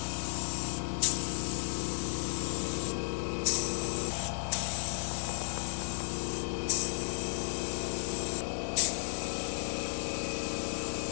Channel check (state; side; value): silent; right; digital silence